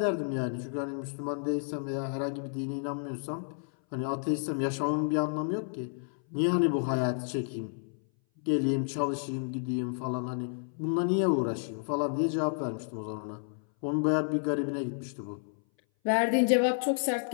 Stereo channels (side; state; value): right; silent; 57 dB below the other